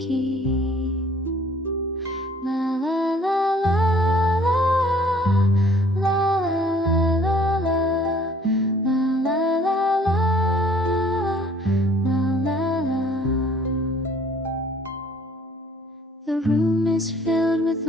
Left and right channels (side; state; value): both; normal; correlation 0.56